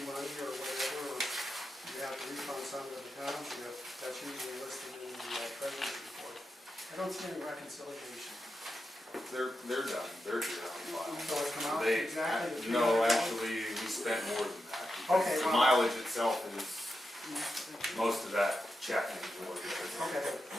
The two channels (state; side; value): normal; both; correlation 0.88